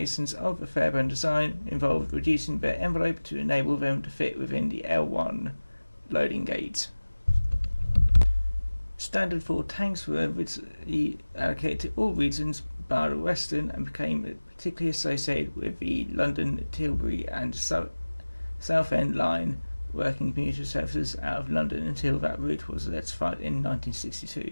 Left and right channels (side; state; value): both; inverted; correlation -1.00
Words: of the Fairburn design involved reducing their envelope to enable them to fit within the L1 loading gauge. Standard 4 tanks were originally allocated to all regions bar the Western, and became particularly associated with the London, Tilbury and Southend line working commuter services out of London until that route was electrified in